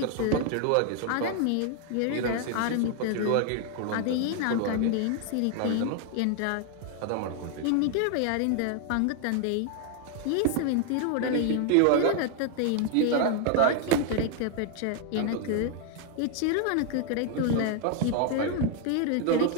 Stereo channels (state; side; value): different; both; correlation 0.00